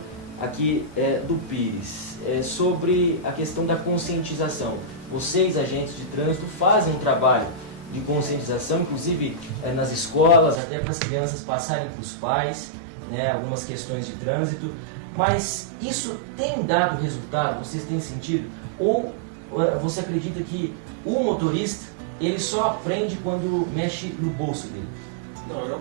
aqui do Pires, sobre a questão da conscientização. Vocês, agentes de trânsito, fazem um trabalho de conscientização, inclusive nas escolas, até para as crianças passarem para os pais, né, algumas questões de trânsito, mas isso tem dado resultado? Vocês têm sentido? Ou você acredita que o motorista ele só aprende quando mexe no bolso dele? Não, eu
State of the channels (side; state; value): left; drops out; at 10.6 s